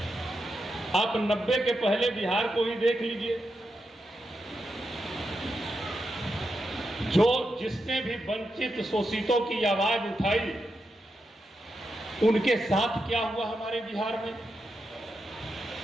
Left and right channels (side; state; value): both; normal; correlation 0.86